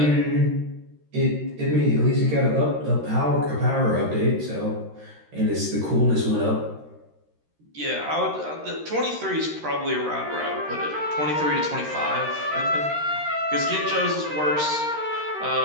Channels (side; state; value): left; late; 13 ms